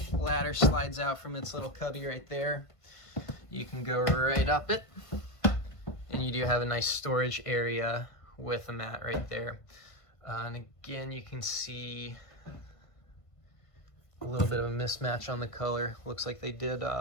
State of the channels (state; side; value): late; right; 1.5 ms